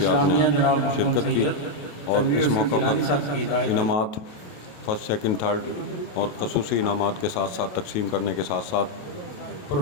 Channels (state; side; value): late; right; 28 ms